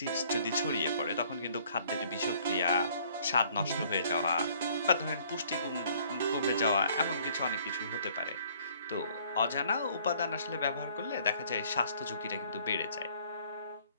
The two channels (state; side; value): inverted; both; correlation -0.60